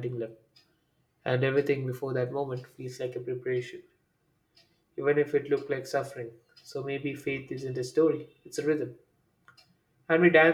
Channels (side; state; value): both; identical; correlation 1.00